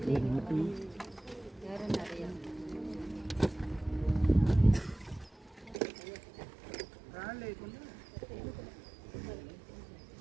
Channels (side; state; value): left; drops out; at 5.8 s